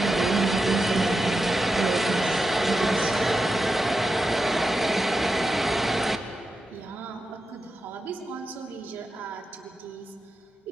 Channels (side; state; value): both; normal; correlation 0.89